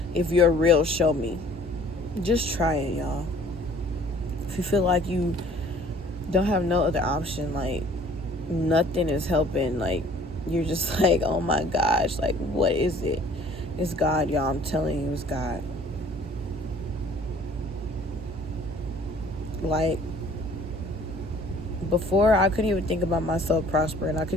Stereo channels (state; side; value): normal; both; correlation 0.53